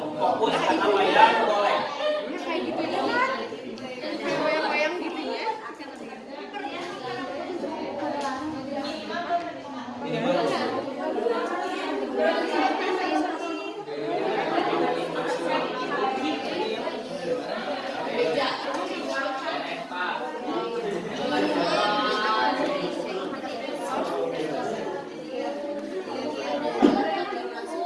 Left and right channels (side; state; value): both; identical; correlation 1.00